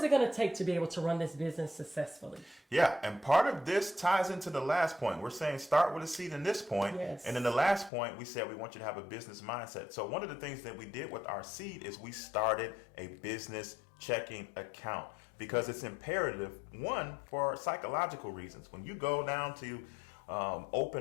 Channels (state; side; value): drops out; right; at 7.9 s